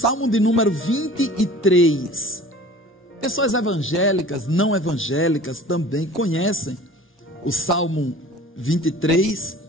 de número 23. Pessoas evangélicas, não evangélicas também conhecem o Salmo 23,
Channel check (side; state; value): both; normal; correlation 0.43